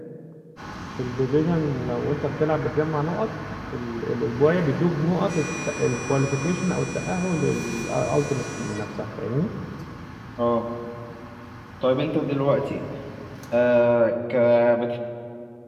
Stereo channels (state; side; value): identical; both; correlation 1.00